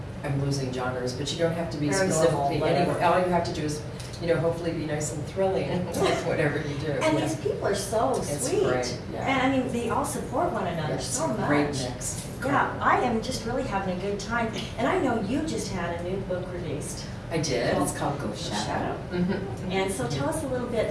losing genres, but you don't have to be Very specifically normal, anywhere. All you have to do is, you know, hopefully be nice and thrilling with whatever you do. And these people are so sweet. Great, yeah. And I mean, they all support one another so much. Great mix. Yeah, I am just really having a good time. And I know you just had a new book released. I did. It's called Ghost Shadow. And so tell us a little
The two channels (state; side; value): identical; both; correlation 1.00